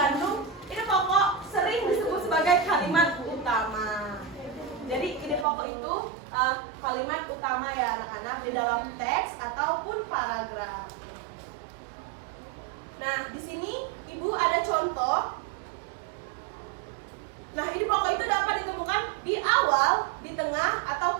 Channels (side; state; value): left; drops out; at 5.5 s